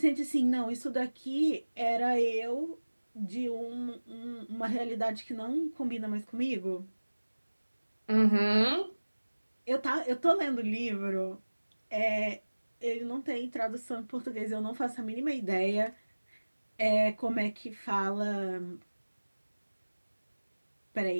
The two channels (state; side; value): inverted; both; correlation -1.00